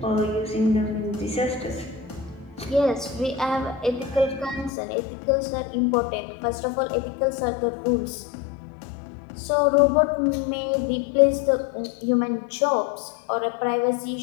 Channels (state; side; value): drops out; right; at 4.7 s